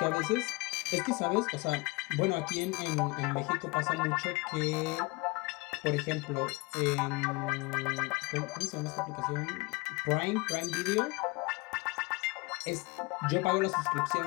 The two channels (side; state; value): right; quieter; 26.1 dB